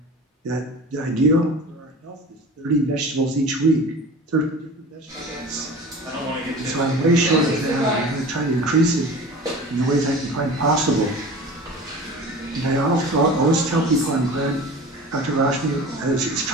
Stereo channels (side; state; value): both; normal; correlation 0.37